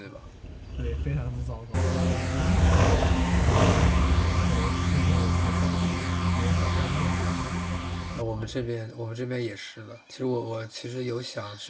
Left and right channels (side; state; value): both; identical; correlation 1.00